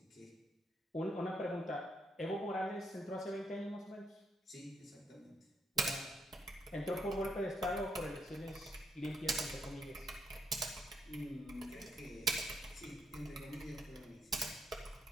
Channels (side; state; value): both; normal; correlation 0.76